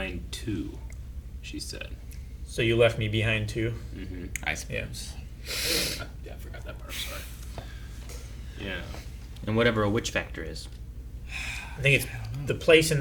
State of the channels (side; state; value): both; identical; correlation 1.00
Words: too, she said. So you left me behind too. Mm-hmm. I suppose. Yeah, I forgot that part. Sorry. Yeah. And whatever a witch factor is. I think it's the place